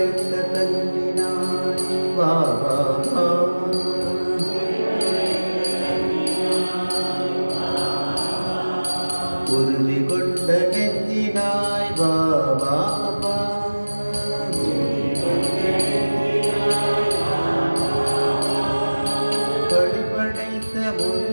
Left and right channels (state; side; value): inverted; both; correlation -1.00